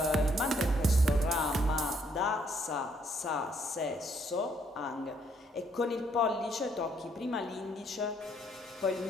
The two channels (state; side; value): normal; both; correlation 0.69